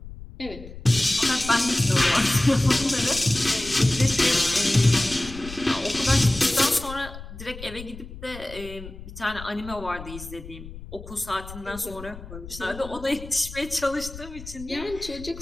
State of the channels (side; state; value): left; noise; rumble, 14 dB below the sound